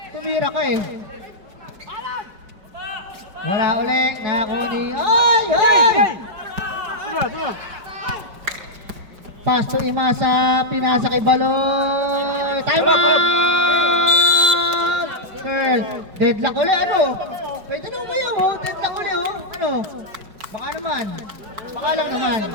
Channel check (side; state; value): left; late; 4.9 ms